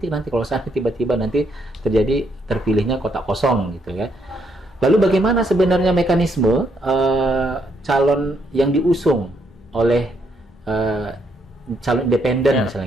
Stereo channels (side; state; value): both; normal; correlation 0.74